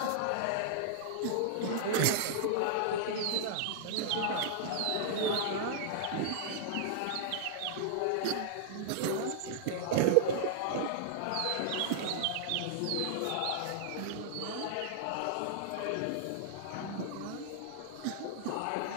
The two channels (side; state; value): both; different; correlation -0.01